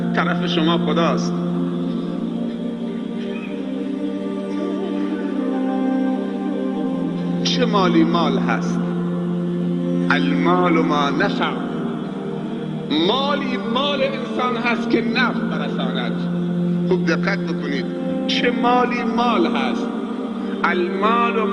طرف شما خداست. چه مالی مال هست؟ المال ما نفع. مالی مال انسان هست که نفع برساند. خوب دقت بکنید، چه مالی مال هست؟ المال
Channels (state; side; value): identical; both; correlation 1.00